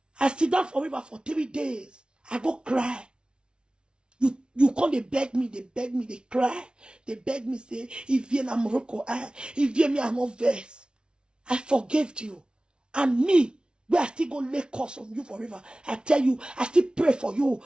I sit down forever for 3 days. I go cry. You come, they beg me, they cry. They beg me, say, if you are Morocco, if you are not verse, I forgave you. And me, we are still going to lay curse on you forever. I tell you, I still pray for you,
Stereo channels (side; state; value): left; late; 0.055 ms